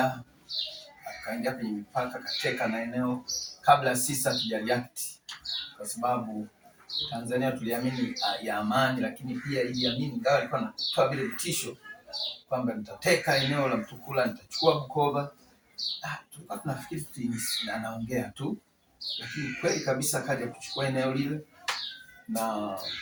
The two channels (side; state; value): both; identical; correlation 1.00